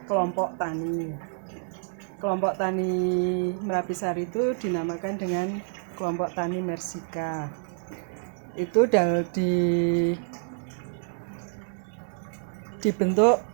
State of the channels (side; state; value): left; silent; 58 dB below the other